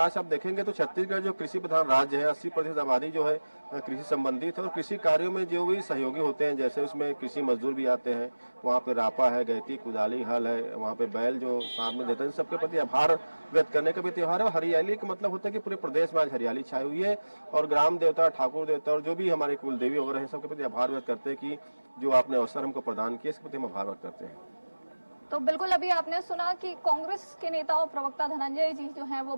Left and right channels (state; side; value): inverted; both; correlation -1.00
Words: आप देखेंगे तो छत्तीसगढ़ जो कृषि प्रधान राज्य है, 80% आबादी जो है कृषि संबंधित है और कृषि कार्यों में जो भी सहयोगी होते हैं, जैसे उसमें कृषि मजदूर भी आते हैं, वहाँ पे रापा है, गैती, कुदाली, हल है, वहाँ पे बैल जो साथ में देते हैं, सबके प्रति आभार व्यक्त करने का भी त्योहार है। हरियाली का मतलब होता है कि पूरे प्रदेश में आज हरियाली छाई हुई है और ग्राम देवता, ठाकुर देवता और जो भी हमारे कुल देवी वगैरह हैं, सबके प्रति आभार व्यक्त करते हैं कि जो आपने अवसर हमको प्रदान किया, इसके प्रति हम आभार व्यक्त करते हैं। तो बिल्कुल, अभी आपने सुना कि कांग्रेस के नेता और प्रवक्ता धनंजय जी जो हैं वो